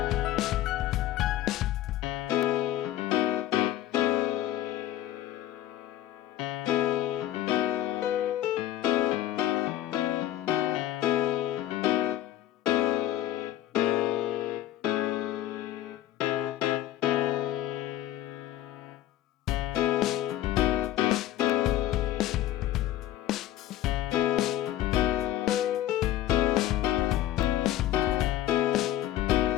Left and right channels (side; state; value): right; quieter; 13.3 dB